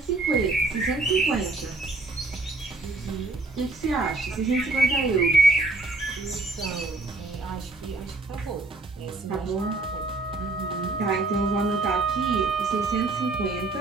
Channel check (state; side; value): quieter; left; 3.1 dB